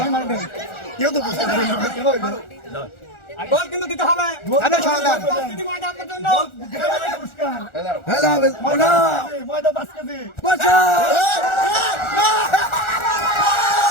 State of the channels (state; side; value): late; right; 1.4 ms